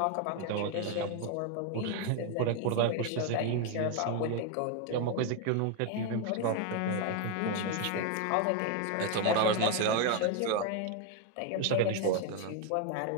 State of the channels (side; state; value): both; different; correlation 0.01